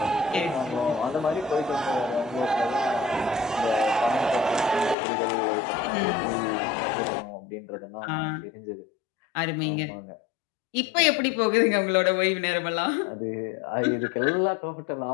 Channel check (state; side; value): drops out; right; at 5.0 s